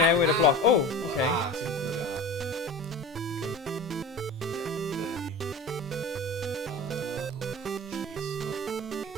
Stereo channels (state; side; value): normal; both; correlation 0.33